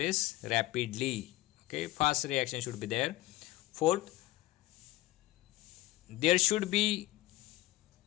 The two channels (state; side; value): quieter; right; 17.3 dB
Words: rapidly. Okay, fast reaction should be there. Fourth, there should be